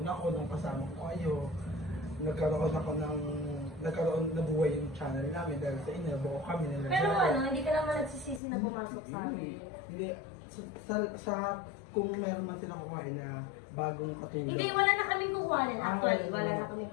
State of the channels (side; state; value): right; drops out; at 8.4 s